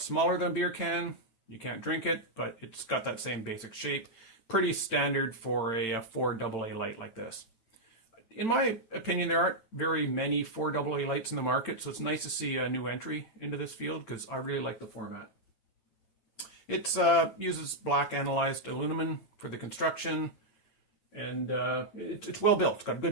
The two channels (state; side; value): late; right; 8.8 ms